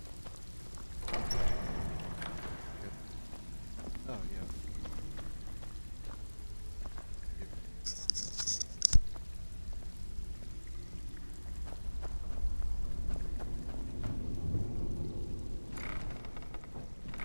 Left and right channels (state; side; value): inverted; both; correlation -1.00